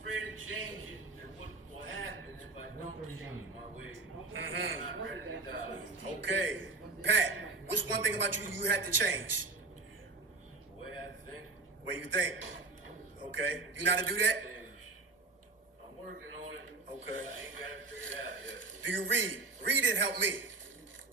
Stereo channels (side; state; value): left; quieter; 3.5 dB